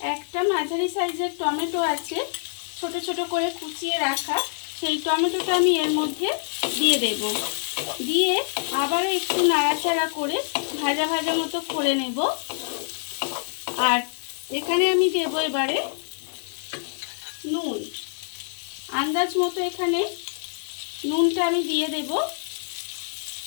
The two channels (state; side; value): silent; right; digital silence